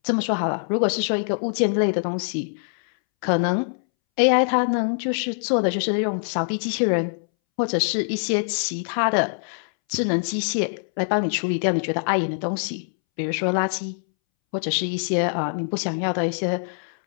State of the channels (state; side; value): silent; right; 63 dB below the other